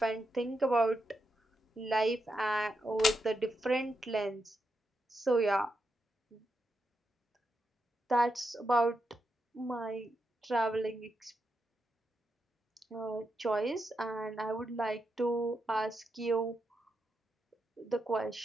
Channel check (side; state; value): both; normal; correlation 0.85